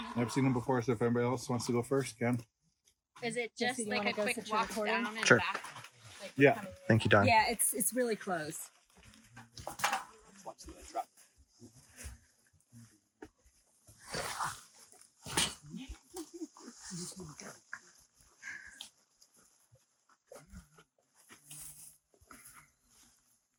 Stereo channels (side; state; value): both; identical; correlation 1.00